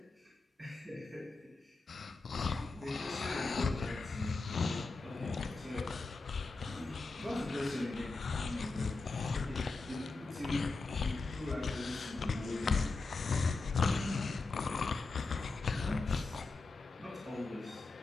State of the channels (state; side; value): quieter; right; 3.7 dB